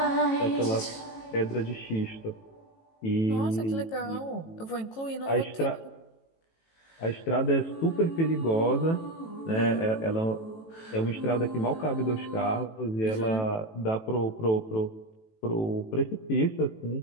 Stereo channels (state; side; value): late; right; 18 ms